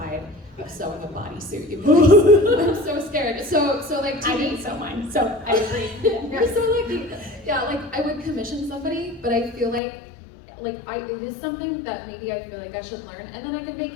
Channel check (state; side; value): drops out; right; at 9.8 s